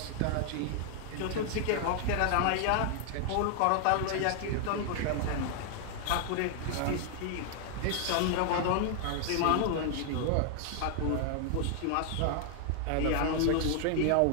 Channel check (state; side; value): different; both; correlation 0.00